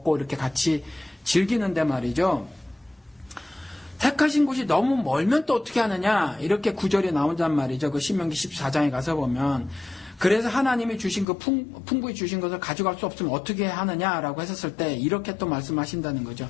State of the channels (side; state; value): right; drops out; at 11.2 s